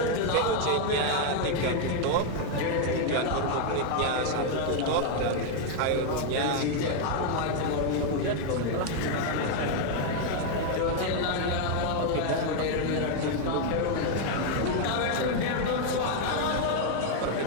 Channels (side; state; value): both; different; correlation 0.00